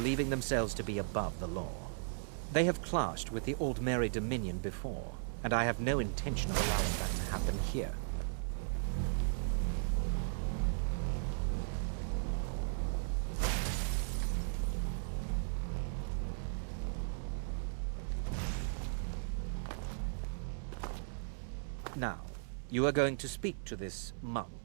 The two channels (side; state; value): left; silent; digital silence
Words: themselves to be above the law. They have clashed with the Old Mary Dominion before, and I have no intention of allowing that to happen here. Now, you are going to speak to this